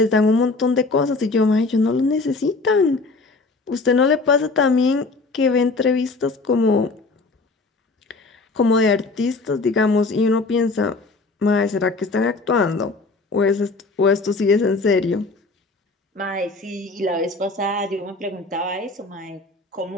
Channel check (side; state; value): right; quieter; 3.6 dB